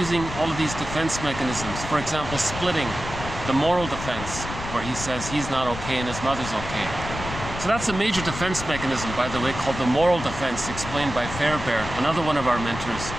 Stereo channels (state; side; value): noise; left; rumble, 9 dB below the sound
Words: all of these defense mechanisms. For example, splitting, the moral defense, where he says he's not okay and his mother's okay. So that's a major defense mechanism, by the way, called the moral defense, explained by Fairbairn, another one of our mentors.